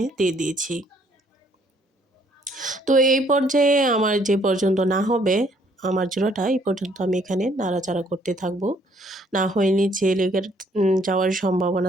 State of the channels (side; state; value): both; normal; correlation 0.64